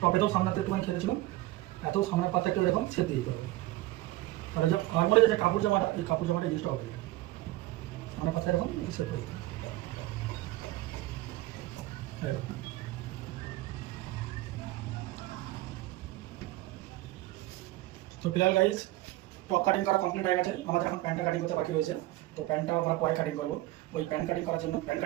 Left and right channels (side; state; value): left; quieter; 17.4 dB